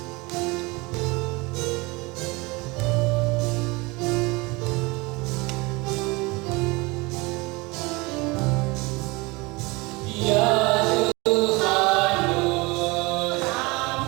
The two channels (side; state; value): left; quieter; 24.7 dB